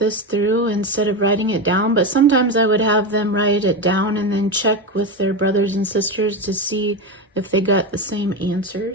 through instead of writing it down, but sometimes I would have them write it down and then check with their brothers and sisters to see if they got the same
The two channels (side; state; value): both; normal; correlation 0.16